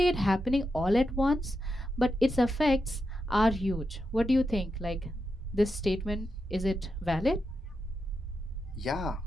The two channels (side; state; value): both; normal; correlation 0.87